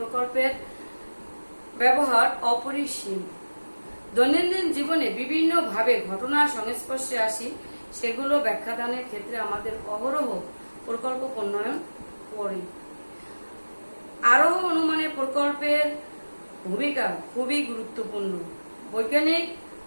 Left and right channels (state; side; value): inverted; both; correlation -1.00